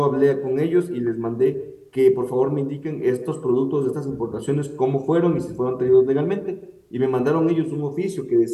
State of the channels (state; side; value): identical; both; correlation 1.00